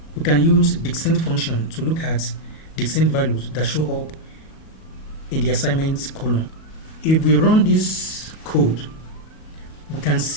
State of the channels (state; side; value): late; right; 38 ms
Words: We can use distinct function to look at distinct values that show up in the assignments column. If we run this code, we can